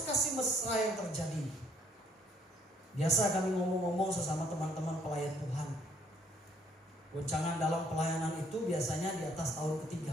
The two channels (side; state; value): both; normal; correlation 0.64